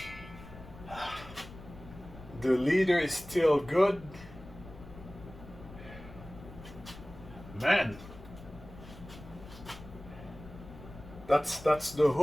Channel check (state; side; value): noise; left; rumble, 16 dB below the sound